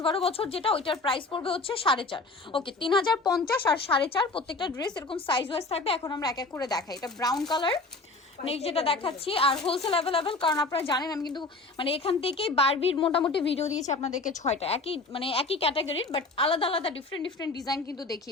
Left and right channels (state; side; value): quieter; right; 3.5 dB